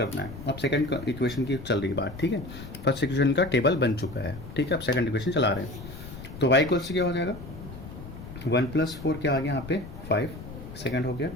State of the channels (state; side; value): noise; left; rumble, 12 dB below the sound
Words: है। अब सेकंड इक्वेशन की चल रही बात, ठीक है। फर्स्ट इक्वेशन का टेबल बन चुका है, ठीक है। अब सेकंड इक्वेशन चला रहे हैं, तो y इक्वल्स टू क्या हो जाएगा 1 प्लस 4 क्या आ गया यहाँ पे 5, सेकंड हो गया।